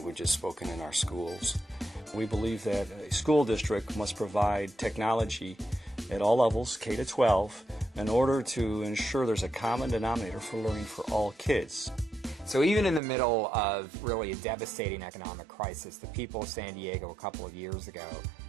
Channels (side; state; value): left; drops out; at 13.0 s